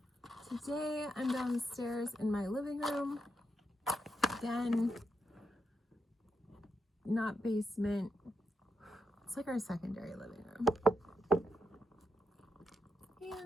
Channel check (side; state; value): both; normal; correlation 0.83